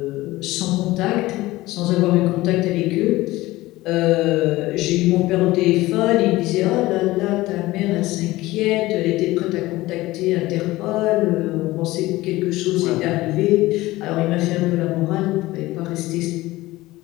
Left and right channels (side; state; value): right; quieter; 18.3 dB